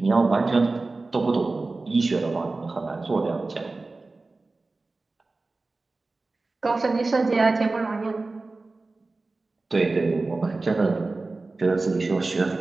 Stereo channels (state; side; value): quieter; left; 3.5 dB